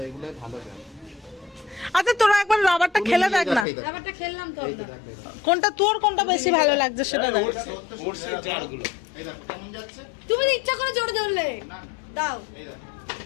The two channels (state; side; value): drops out; right; at 3.7 s